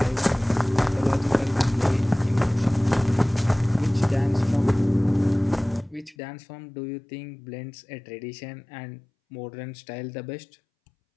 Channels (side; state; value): right; drops out; at 6.2 s